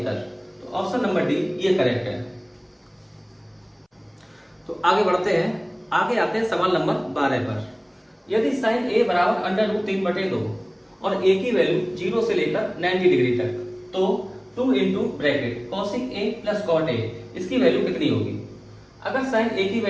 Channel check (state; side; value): identical; both; correlation 1.00